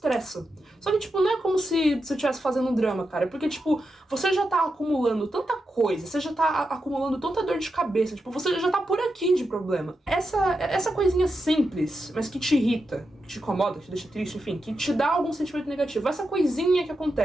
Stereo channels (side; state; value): both; normal; correlation 0.88